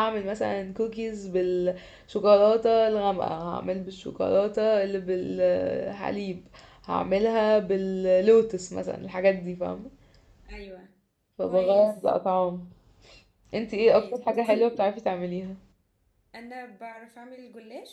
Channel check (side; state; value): both; identical; correlation 1.00